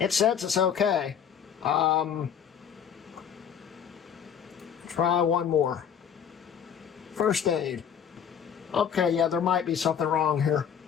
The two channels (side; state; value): right; quieter; 8.1 dB